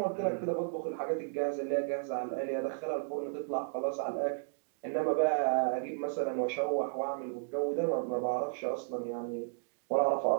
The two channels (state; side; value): silent; left; digital silence